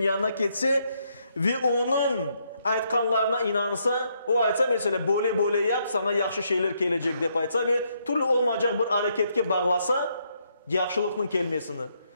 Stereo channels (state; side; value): inverted; both; correlation -0.75